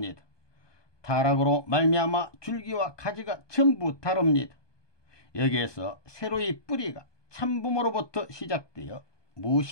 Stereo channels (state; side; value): late; right; 1.2 ms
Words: 타락으로 말미암아 줄기와 가지가 전부 다릅니다. 여기에서 새로이 뿌리가 참부모로부터 시작되어